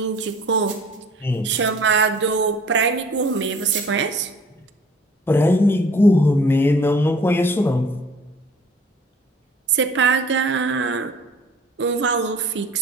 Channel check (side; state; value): both; normal; correlation 0.52